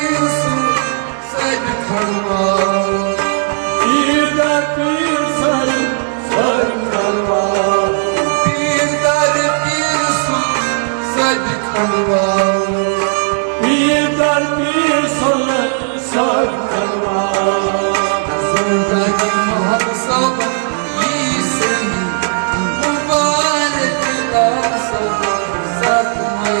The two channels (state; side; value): silent; left; 69 dB below the other